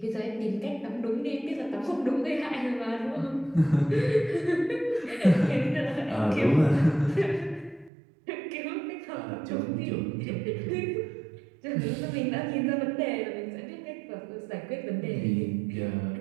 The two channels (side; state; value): left; drops out; at 7.9 s